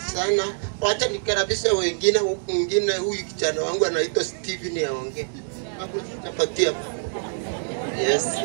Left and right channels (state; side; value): silent; left; digital silence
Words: sana. Wacha nikaribisha wengine. Mwingine huyu kijana wangu anaitwa Steven aongee. Hapo tutapatia. Yes.